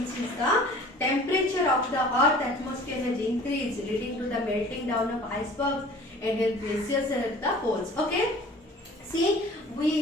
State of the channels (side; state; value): both; normal; correlation 0.47